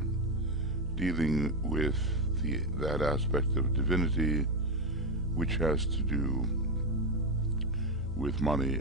dealing with that aspect of divinity which has to do with money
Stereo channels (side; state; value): both; normal; correlation 0.09